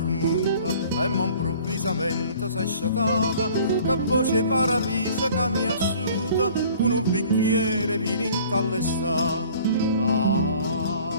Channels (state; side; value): inverted; both; correlation -0.50